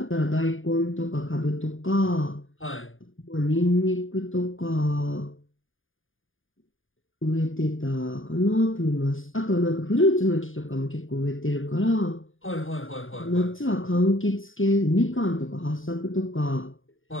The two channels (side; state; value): right; late; 0.58 ms